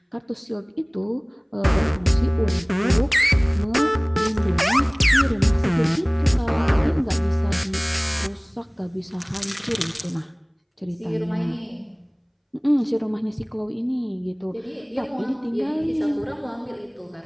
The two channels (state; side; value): identical; both; correlation 1.00